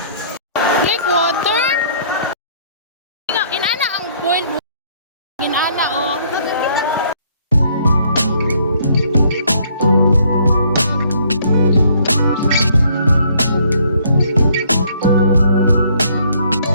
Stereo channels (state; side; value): inverted; both; correlation -0.64